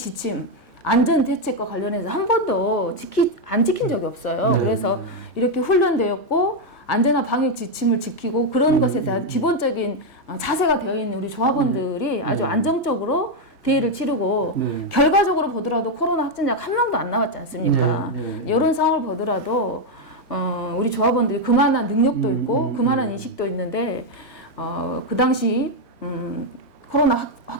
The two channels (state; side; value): normal; both; correlation 0.03